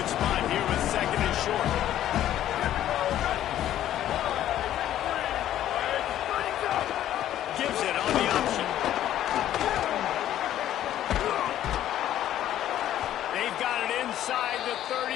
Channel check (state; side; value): quieter; right; 12.1 dB